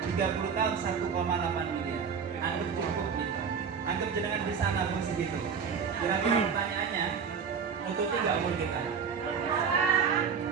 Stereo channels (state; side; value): quieter; left; 6.4 dB